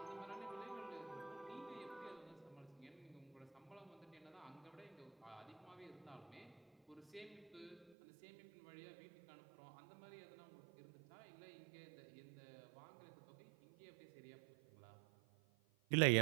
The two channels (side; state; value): left; drops out; at 8.0 s